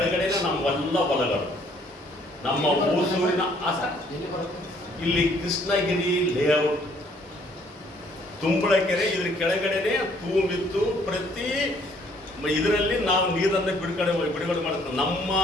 ನಮ್ಮೆಲ್ಲ ಹೊಲಗಳು, ನಮ್ಮ ಊಸೂರಿನ ಇಲ್ಲಿ ಕೃಷ್ಣಗಿರಿ ಲೇಔಟ್ ತುಂಬಳ ಕೆರೆ. ಇದ್ರ ಕೆಳಗಡೆನೆ ತೂಮಿತ್ತು. ಪ್ರತಿ ಇದರಲ್ಲಿ ನಾವು ನೀರನ್ನು ಬಿಡುಗಡೆ ಮಾಡ್ತೀವಿ. ನಮ್ಮ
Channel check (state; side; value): normal; both; correlation 0.63